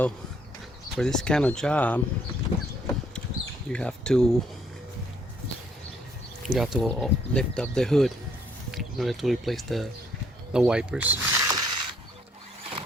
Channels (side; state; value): both; normal; correlation 0.67